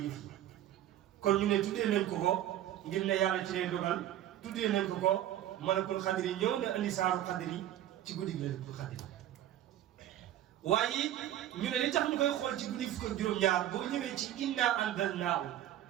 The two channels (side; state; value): left; quieter; 12.3 dB